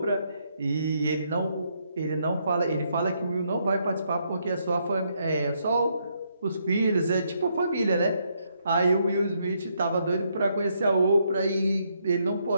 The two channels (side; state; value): both; inverted; correlation -0.75